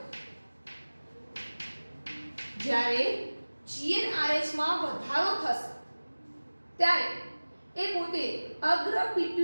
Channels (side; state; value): both; inverted; correlation -1.00